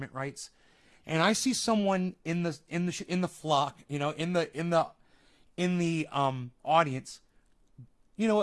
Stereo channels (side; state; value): both; identical; correlation 1.00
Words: rights, and I see someone in the flock, in the audience,